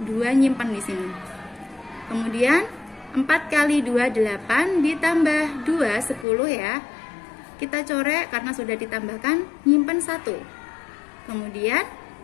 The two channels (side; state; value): right; drops out; at 6.2 s